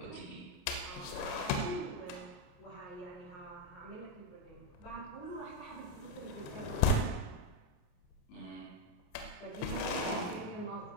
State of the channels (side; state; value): right; late; 29 ms